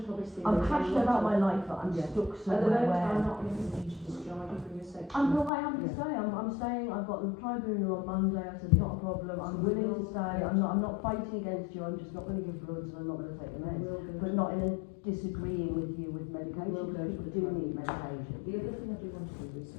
obviously, I'm passionate about my life, but I'm stuck At the somewhere moment, I'm where. not in a position to discharge you from your section. I have to stay. I'm staying. I've got the tribunal on Monday. I said not a problem. I'm willing to stay. I'm not fighting against you. I'm just not going to give bloods and I'm not going to take the meds. But not in a disagreeing with you with medication. People do need medication. The other thing I do want to do is,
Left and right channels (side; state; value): right; drops out; at 5.5 s